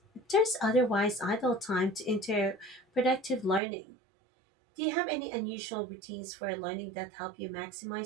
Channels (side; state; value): left; drops out; at 3.6 s